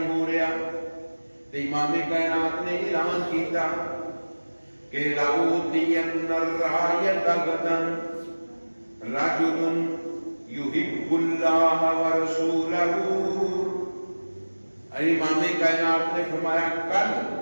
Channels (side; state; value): both; inverted; correlation -1.00